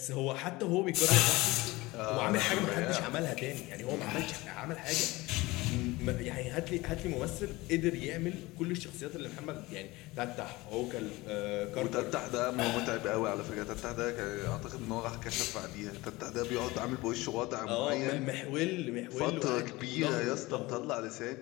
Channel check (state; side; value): quieter; right; 20.9 dB